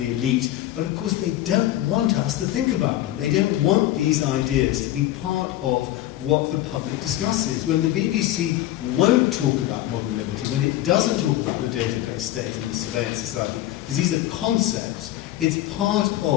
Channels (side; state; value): right; quieter; 14.3 dB